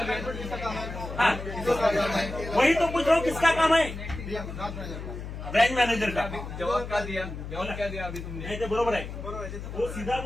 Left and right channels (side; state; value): left; noise; hum, 8 dB below the sound